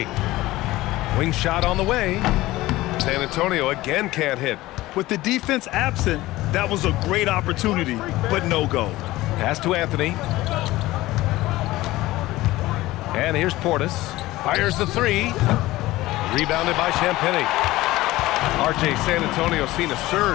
Wing shot on the way. San Antonio again can't hit. With the defense absent, that was a great opportunity, but no go. Pass to Anthony. And here's Portis. Fires the three. Rebounded by Champagnie. RJ, San Antonio seen a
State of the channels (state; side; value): quieter; right; 17.7 dB